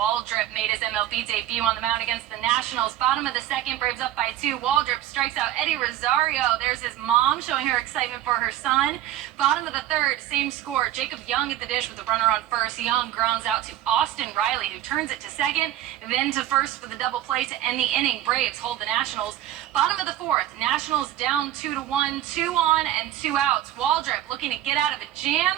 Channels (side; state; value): left; quieter; 12.7 dB